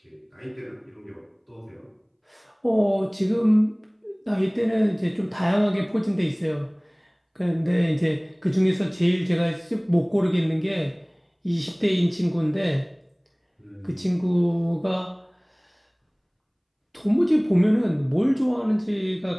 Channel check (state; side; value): identical; both; correlation 1.00